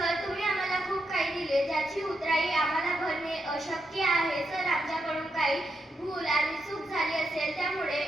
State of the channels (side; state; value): both; normal; correlation 0.83